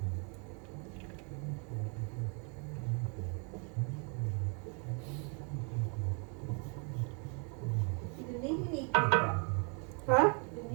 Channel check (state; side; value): quieter; left; 37.3 dB